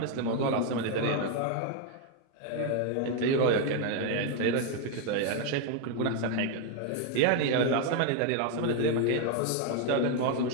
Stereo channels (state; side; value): different; both; correlation 0.01